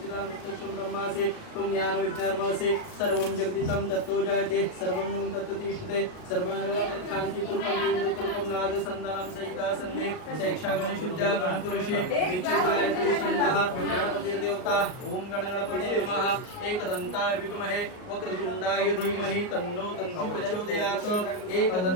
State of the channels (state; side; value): late; right; 38 ms